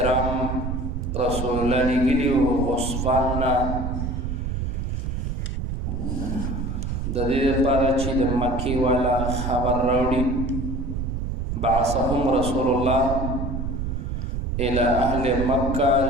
رسول الله لیږلي وو غصفان نه د دې لپاره چې د مکې والا خبر راوړي بعثهم رسول الله الى اهل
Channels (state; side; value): noise; right; rumble, 3 dB below the sound